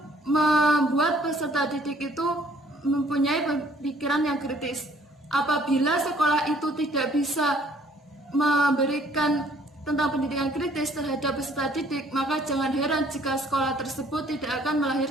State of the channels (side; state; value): both; normal; correlation 0.60